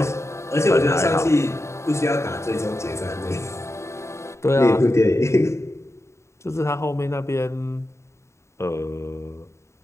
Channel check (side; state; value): right; late; 0.14 ms